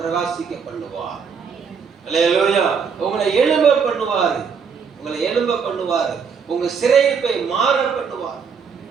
பிரகாசிக்க பண்ணுவார். அல்லேலூயா. உங்களை எழும்ப பண்ணுவாரு. உங்க சிறையிருப்பை மாற பண்ணுவார்.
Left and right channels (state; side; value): quieter; left; 6.2 dB